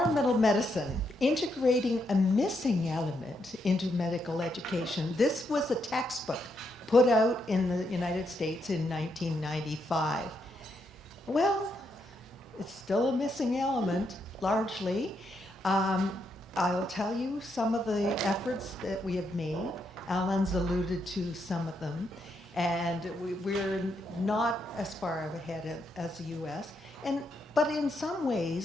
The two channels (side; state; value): both; normal; correlation 0.79